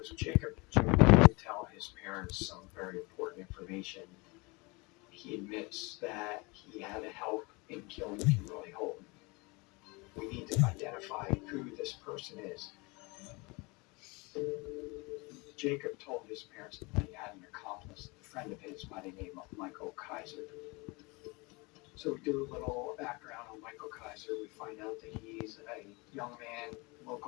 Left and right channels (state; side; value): quieter; right; 26.6 dB